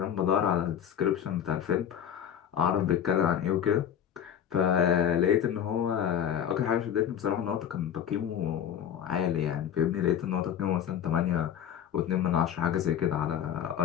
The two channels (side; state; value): right; quieter; 9.3 dB